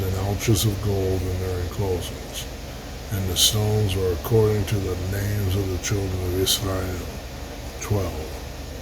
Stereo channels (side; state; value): both; identical; correlation 1.00